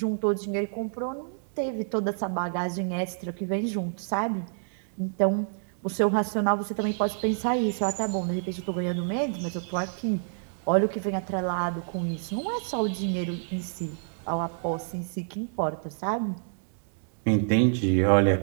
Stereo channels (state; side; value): silent; left; digital silence